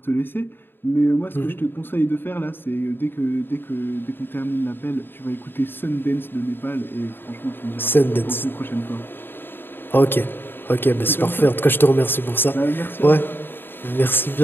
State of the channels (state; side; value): late; right; 0.099 ms